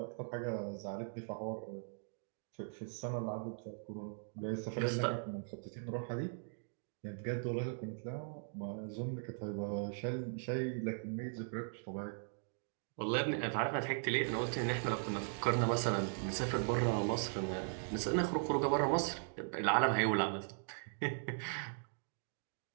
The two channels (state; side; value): silent; left; digital silence